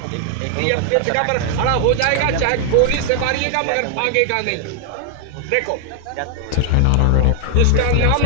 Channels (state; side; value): different; both; correlation 0.00